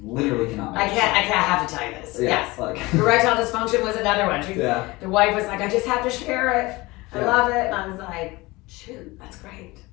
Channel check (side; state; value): right; quieter; 21.8 dB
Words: you literally cannot. Make I have to tell you this. Yeah, Yes. like. Erectile dysfunction was another one. Yeah. The wife was like, I just have to share it. I Yeah. love it. And I was like, shoot, that's great.